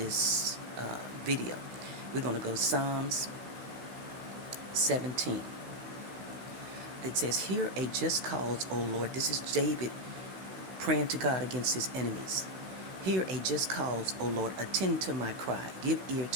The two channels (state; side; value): late; left; 16 ms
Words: video. We're going to go to Psalms 17. It says, "Hear a just cause, O Lord." This is David praying to God against his enemies. "Hear a just cause, O Lord. Attend to my cry. Give ear